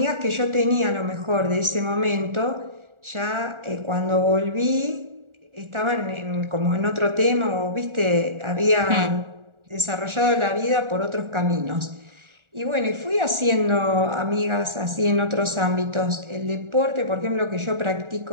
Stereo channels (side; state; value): left; late; 1.4 ms